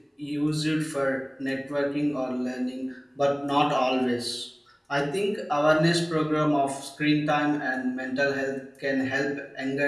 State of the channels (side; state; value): both; identical; correlation 1.00